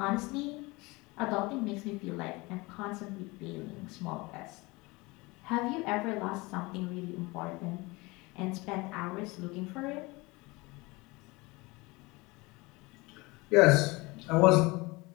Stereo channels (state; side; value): quieter; right; 23.9 dB